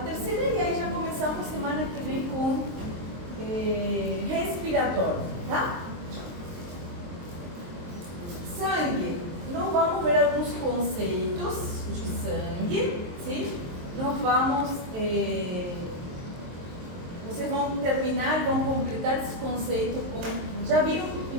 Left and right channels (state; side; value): late; left; 23 ms